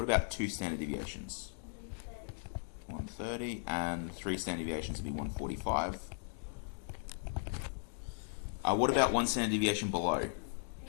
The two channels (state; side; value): silent; right; digital silence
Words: about two standard deviations? 130, and three standard deviations would be 145. What about one standard deviation below?